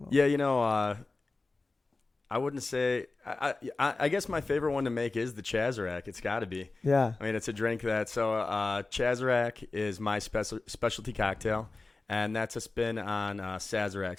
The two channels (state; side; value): quieter; right; 3.5 dB